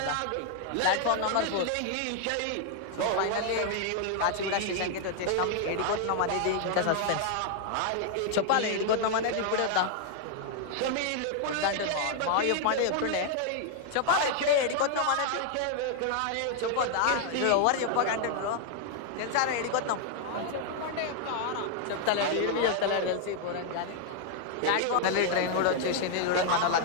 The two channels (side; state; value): both; different; correlation 0.00